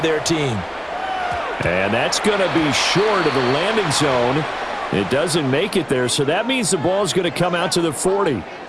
their team. And that's going to be short of the landing zone. It doesn't make it there, so that means the ball's going to come out to the 40.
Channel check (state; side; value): identical; both; correlation 1.00